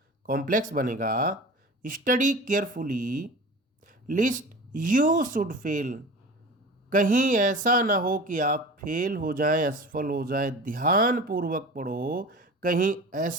कॉम्प्लेक्स बनेगा, study carefully list you should fail, कहीं ऐसा ना हो कि आप फेल हो जाएं, असफल हो जाएं। ध्यानपूर्वक पढ़ो, कहीं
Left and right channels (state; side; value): normal; both; correlation 0.36